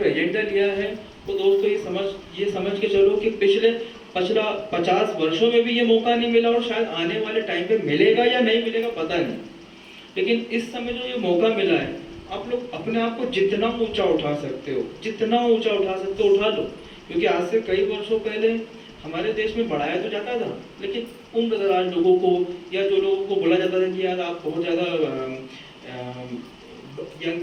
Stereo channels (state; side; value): identical; both; correlation 1.00